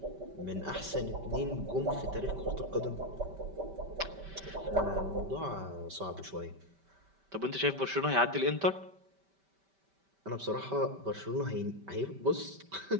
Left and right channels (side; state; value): left; late; 5.1 ms